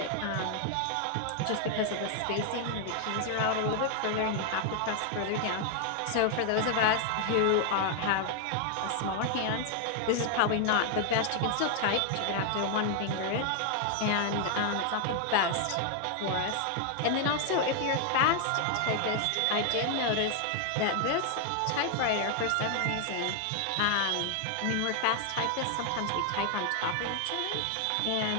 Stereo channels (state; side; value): different; both; correlation 0.00